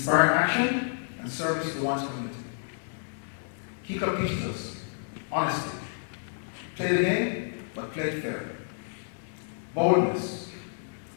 action and service to one's community. Key Club teaches us honesty. Play the game, but play it fair. Boldness.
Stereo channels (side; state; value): right; silent; digital silence